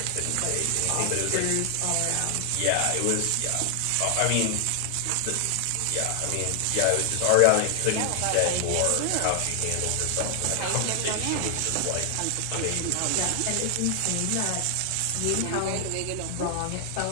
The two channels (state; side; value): different; both; correlation 0.00